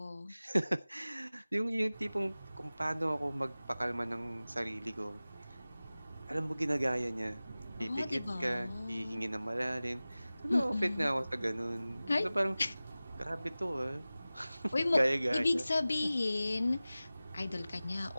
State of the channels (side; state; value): both; inverted; correlation -0.97